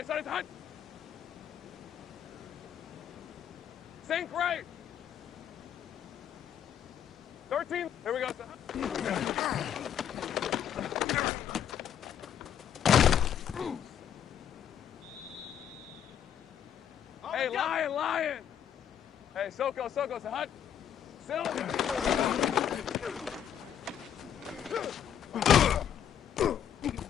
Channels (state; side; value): quieter; right; 9.3 dB